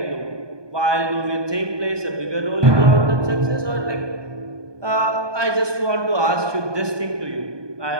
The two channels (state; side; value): late; left; 1.2 ms